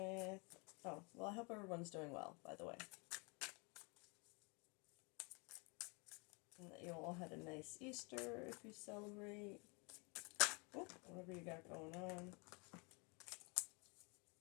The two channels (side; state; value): right; quieter; 31.5 dB